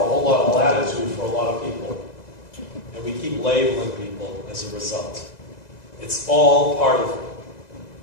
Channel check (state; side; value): late; right; 2.0 ms